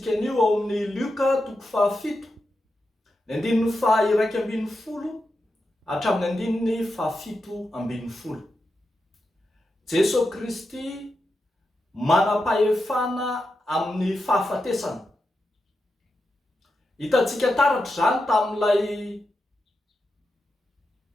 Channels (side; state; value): both; normal; correlation 0.88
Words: anio ao amin'ny Lioka 7, ny 2:20 hatramin'ny 7:70. Jesosy KRISTY manam-pahefana amin'ny fahafatesana. Hitantsika taratra zany tamin'ilay